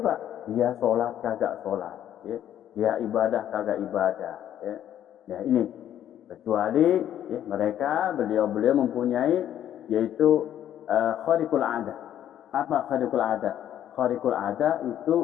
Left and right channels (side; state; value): right; quieter; 11.0 dB